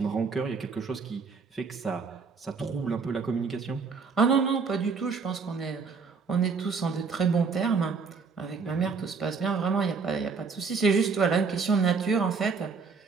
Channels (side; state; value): left; quieter; 5.0 dB